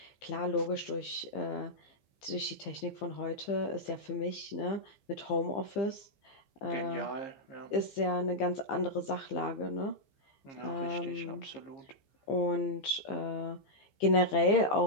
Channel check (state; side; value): late; right; 15 ms